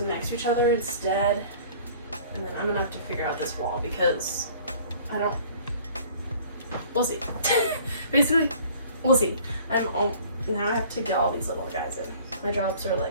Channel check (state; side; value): inverted; both; correlation -0.50